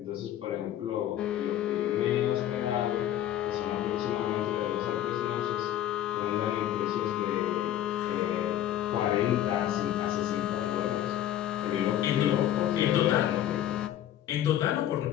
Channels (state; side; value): quieter; right; 11.9 dB